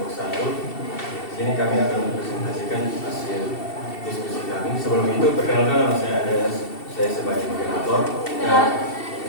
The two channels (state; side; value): late; right; 2.7 ms